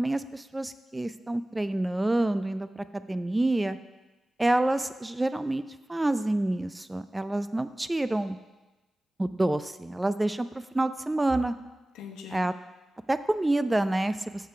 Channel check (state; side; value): normal; both; correlation 0.98